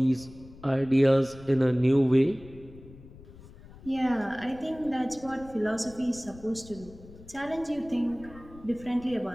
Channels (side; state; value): left; noise; rumble, 20 dB below the sound